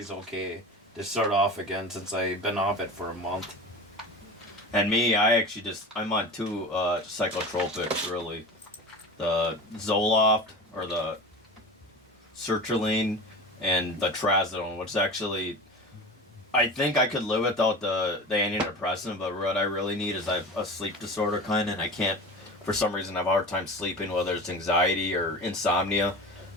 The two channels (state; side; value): normal; both; correlation 0.32